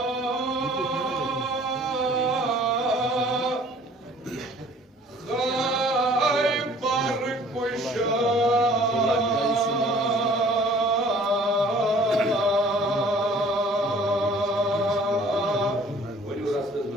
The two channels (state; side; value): normal; both; correlation 0.53